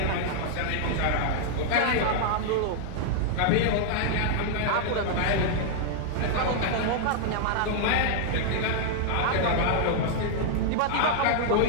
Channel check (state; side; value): different; both; correlation -0.01